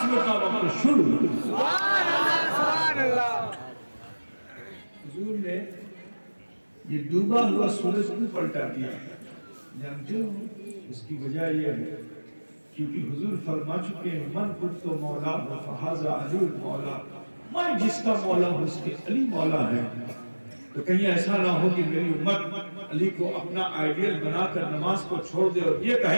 کا وقت شروع ہوا۔ حضور نے یہ ڈوبا ہوا سورج کو پلٹا دیا، جانتے ہو اس کی وجہ یہ ہے کیونکہ حضور فرما چکے ہیں من کنت مولا فہذا علی مولا، میں جس کا مولا ہوں اس کے علی مولا ہے۔ تو کہیں ایسا نہ ہو کہ میری امت علی کو اپنا آئیڈیل بنا کر نماز کو چھوڑ دے اور یہ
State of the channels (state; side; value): inverted; both; correlation -1.00